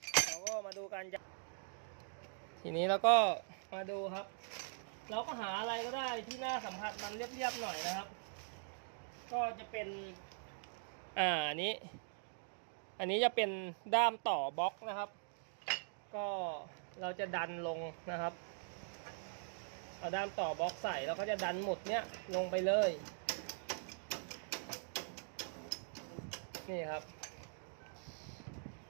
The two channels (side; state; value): left; silent; digital silence